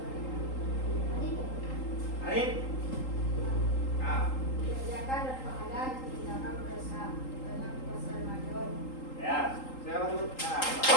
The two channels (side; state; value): right; late; 3.8 ms